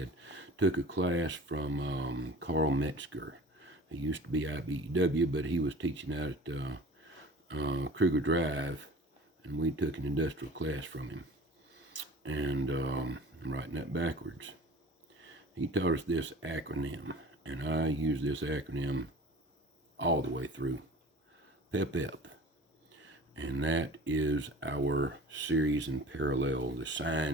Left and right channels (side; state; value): both; normal; correlation 0.42